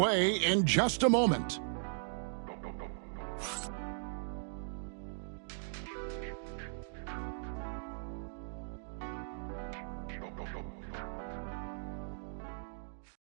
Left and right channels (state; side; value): silent; left; digital silence